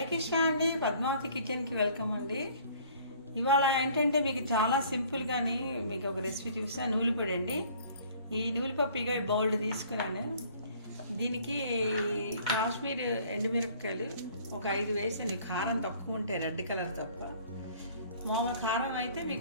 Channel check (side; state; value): both; inverted; correlation -0.55